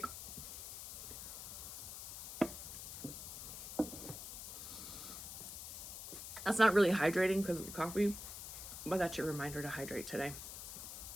That's not really hydrating because of the coffee, but that's your reminder to hydrate today.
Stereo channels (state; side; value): noise; left; hiss, 8 dB below the sound